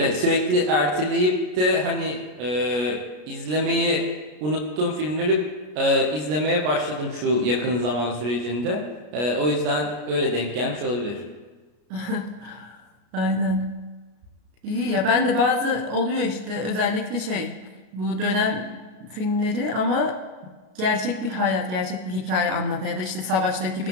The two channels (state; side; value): late; left; 33 ms